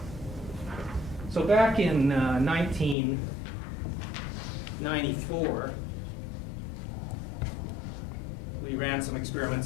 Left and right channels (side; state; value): right; drops out; at 3.0 s